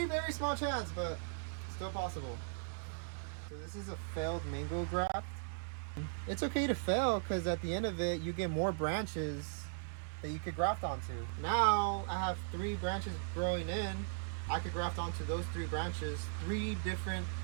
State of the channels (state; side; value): silent; left; digital silence